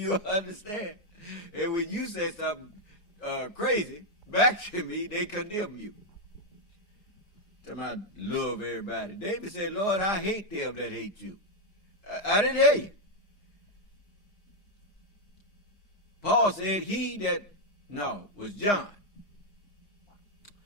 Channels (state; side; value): late; right; 4.9 ms